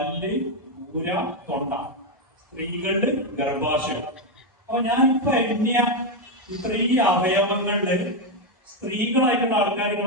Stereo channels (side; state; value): both; normal; correlation 0.05